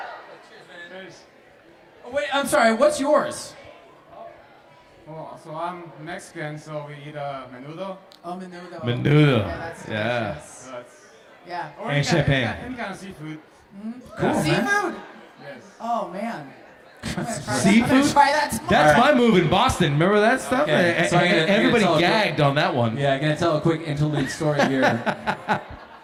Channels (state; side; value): identical; both; correlation 1.00